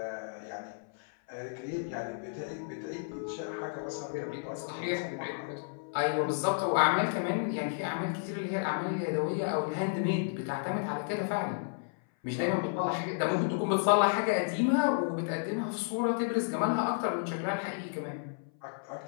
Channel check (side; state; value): right; silent; 56 dB below the other